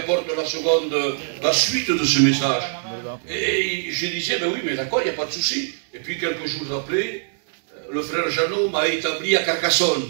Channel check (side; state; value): left; silent; digital silence